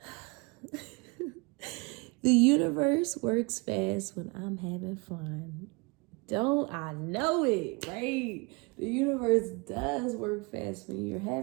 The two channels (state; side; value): quieter; left; 28.4 dB